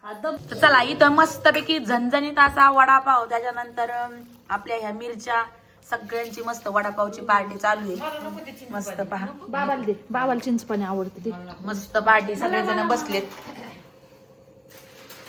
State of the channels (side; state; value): both; identical; correlation 1.00